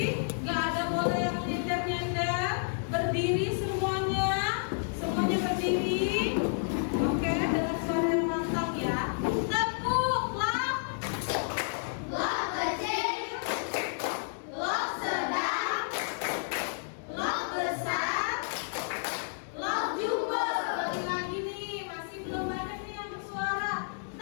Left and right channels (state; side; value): silent; right; 57 dB below the other